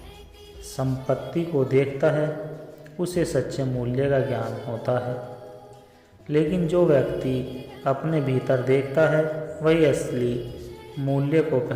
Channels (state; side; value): identical; both; correlation 1.00